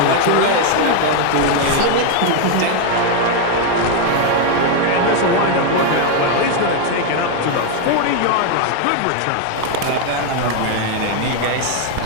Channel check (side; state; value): both; different; correlation 0.01